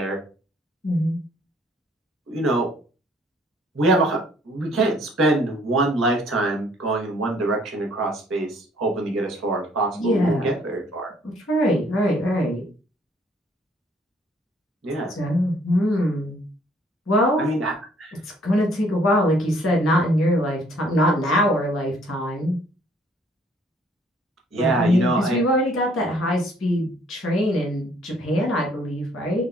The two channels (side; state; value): both; normal; correlation 0.62